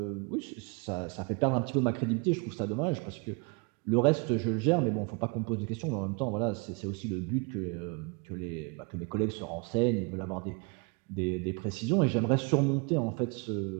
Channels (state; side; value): quieter; left; 31.8 dB